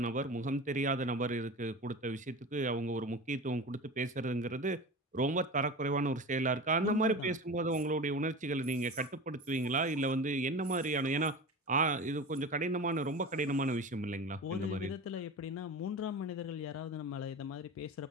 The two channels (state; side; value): normal; both; correlation 0.31